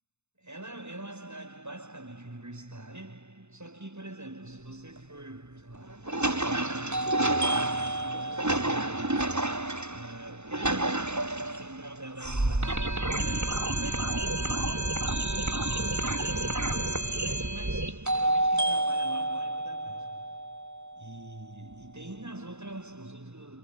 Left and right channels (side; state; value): left; late; 0.82 ms